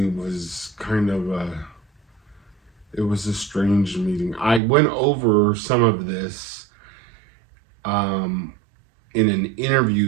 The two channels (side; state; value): left; drops out; at 4.6 s